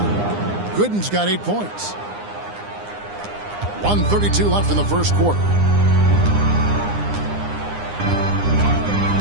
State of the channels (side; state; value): left; late; 9.8 ms